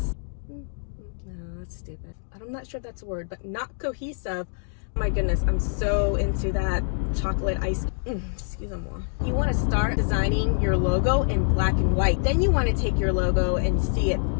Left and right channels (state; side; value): silent; right; digital silence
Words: No, that's stupid. I'm not sure if that's a word, but not cohesive. Oh my goodness, I'm so into that chocolate ice. Excuse me. You want to start designing your logo in black and white. Then you want to take your logo and see it